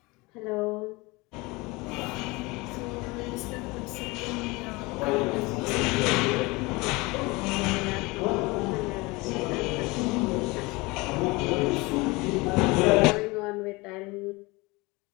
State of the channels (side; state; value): right; quieter; 24.1 dB